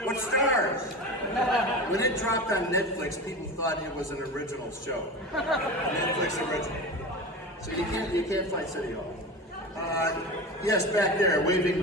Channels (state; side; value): normal; both; correlation 0.28